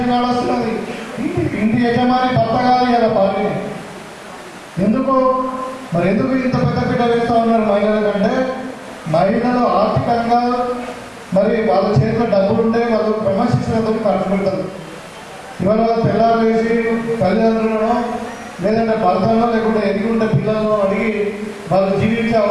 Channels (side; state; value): both; identical; correlation 1.00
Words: కార్డు వస్తున్నది, ఇంటి యజమాని భర్త కాదు కదా భార్య. ఎందుకు మరి ఎందుకు ఇంత పెద్ద పీట వేస్తూ ఉన్నారు మహిళల కంటే? మహిళలు ఆర్థికంగా మరి వాళ్ళ చేతిలో డబ్బులు ఉంటే వాళ్ళు క్రమశిక్షణతో ఖర్చు పెడతారు. ఇవాళ పిల్లలు వేసి తల్లిదండ్రులను లేదంటే భర్తలో లేకుంటే ఎదిగి ఉండే పిల్లలను అడిగి వాళ్ళు జీవించే